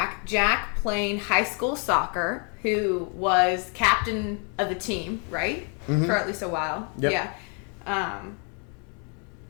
playing high school soccer, who was captain of the team, right? Mm-hmm. For at least a while. Yep. Yeah.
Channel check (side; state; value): right; quieter; 37.7 dB